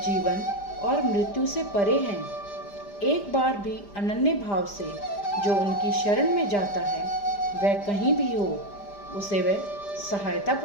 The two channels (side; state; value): right; late; 5.0 ms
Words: और मृत्यु से परे हैं। एक बार भी अनन्य भाव से जो उनकी शरण में जाता है वह कहीं भी हो उसे वह सहायता